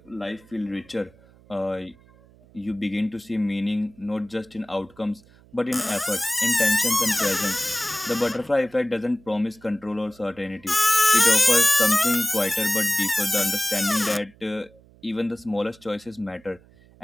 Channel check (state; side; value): noise; right; hum, 27 dB below the sound